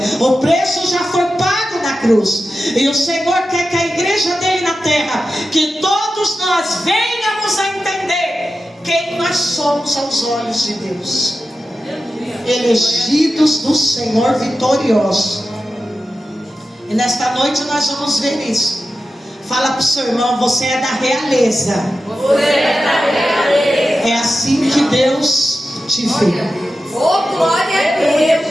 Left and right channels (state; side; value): normal; both; correlation 0.92